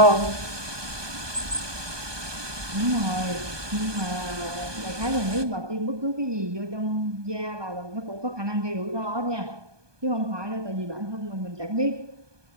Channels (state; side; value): late; left; 1.2 ms